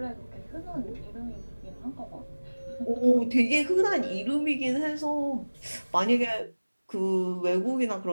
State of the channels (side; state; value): both; inverted; correlation -1.00